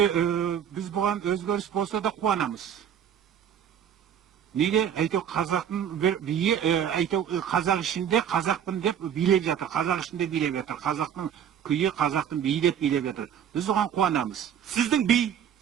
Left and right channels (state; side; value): quieter; left; 9.0 dB